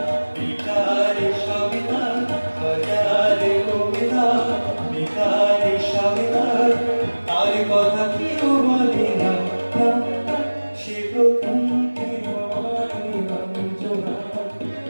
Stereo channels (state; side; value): inverted; both; correlation -1.00